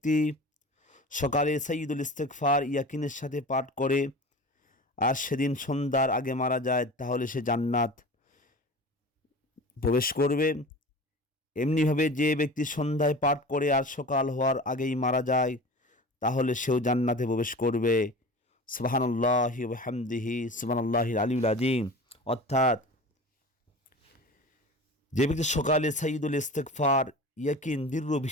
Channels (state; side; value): normal; both; correlation 0.36